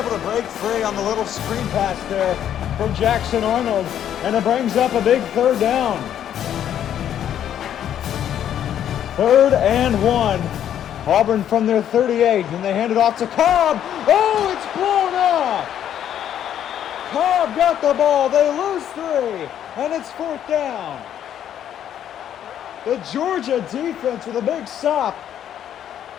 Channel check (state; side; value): quieter; right; 10.2 dB